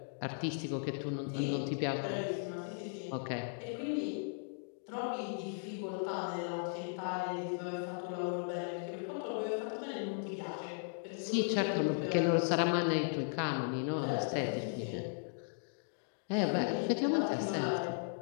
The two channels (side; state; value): right; silent; digital silence